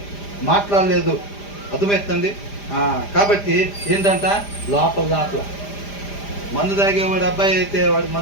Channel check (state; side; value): late; right; 5.0 ms